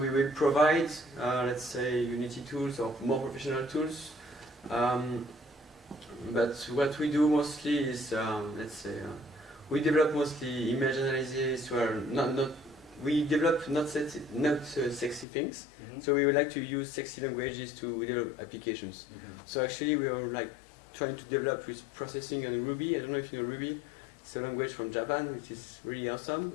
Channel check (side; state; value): right; drops out; at 15.2 s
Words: will provide, let's say, Unity tools or more professional tools. But what we do mostly is, let's say, we develop mostly image analysis, where we develop not sexy things, so we would like to use sexy languages to develop applications. So actually we are like trying to develop with processing and Ruby. I don't know if you know Ruby. It's a language from Japan, which is really awesome.